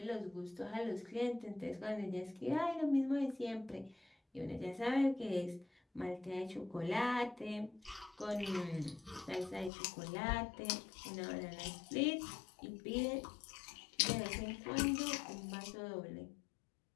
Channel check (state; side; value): drops out; right; at 9.7 s